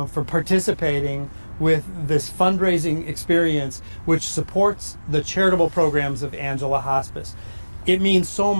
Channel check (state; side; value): inverted; both; correlation -1.00